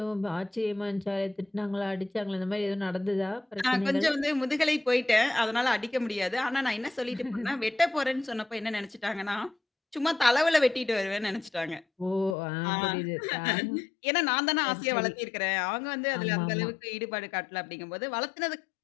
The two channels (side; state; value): right; drops out; at 12.4 s